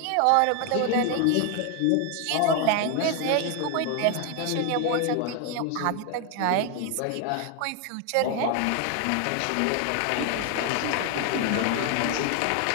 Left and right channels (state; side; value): different; both; correlation 0.01